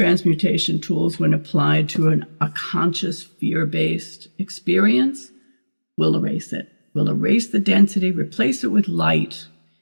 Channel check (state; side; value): inverted; both; correlation -1.00